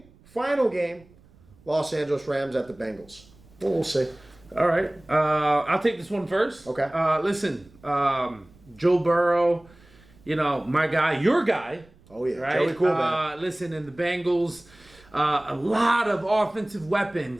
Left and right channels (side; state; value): right; noise; rumble, 27 dB below the sound